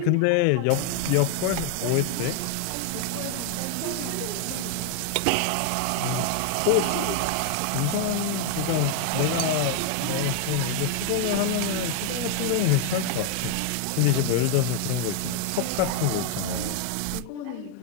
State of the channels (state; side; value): different; both; correlation 0.00